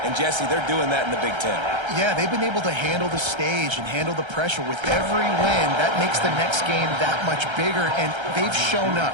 and Jesse, they're doing that in the Big Ten. Yeah, they've been able to handle the stage and handle the pressure with every win. That makes the next game that much bigger, and they've shown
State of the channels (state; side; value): late; left; 1.3 ms